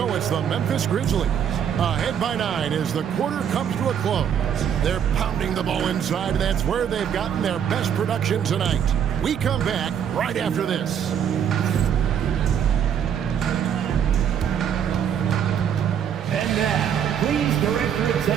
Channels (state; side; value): quieter; left; 8.6 dB